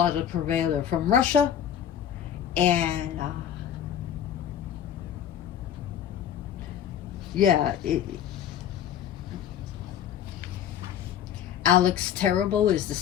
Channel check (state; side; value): quieter; right; 9.8 dB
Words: to Prevail. They're from Russia. And yeah, Alex Terrible is the